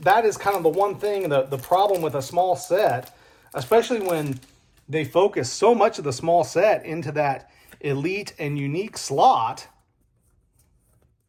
is kind of the one thing, the problem with a small set, especially when they focus so much of the small set into that elite and unique slot.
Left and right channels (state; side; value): identical; both; correlation 1.00